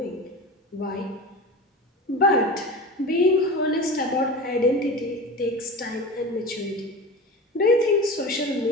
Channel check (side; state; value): both; normal; correlation 0.30